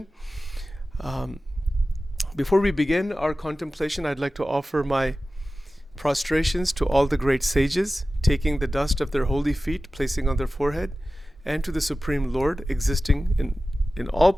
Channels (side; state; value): both; normal; correlation 0.96